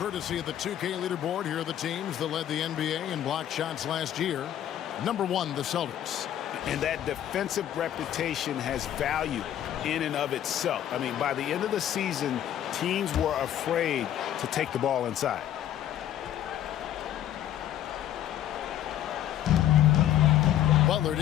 of the 2K leaderboard, here are the teams that led the NBA in block shots last year. Number 1, the Celtics. And that defensive reputation has value in and of itself. I mean, by the end of the season, teams were afraid to take the ball inside. Butler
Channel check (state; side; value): quieter; right; 11.4 dB